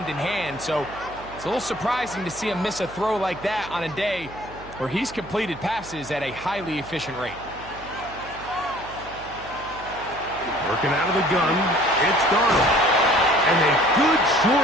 in hand, so it's a little surprising to see him miss a throw like that on a day where he's completed passes at a highly efficient rate. Working out of the gun, it's Darnold. And a good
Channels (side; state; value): right; noise; hum, 18 dB below the sound